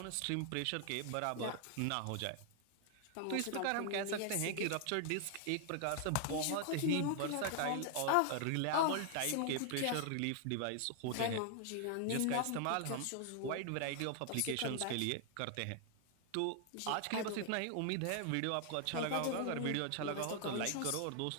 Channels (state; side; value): different; both; correlation 0.00